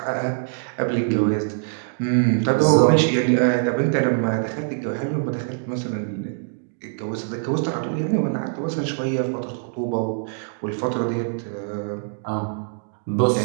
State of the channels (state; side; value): silent; left; digital silence